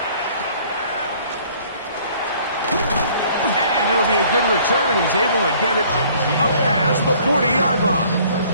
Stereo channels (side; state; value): both; inverted; correlation -0.56